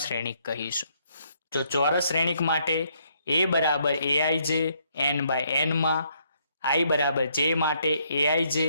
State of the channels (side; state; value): both; inverted; correlation -0.71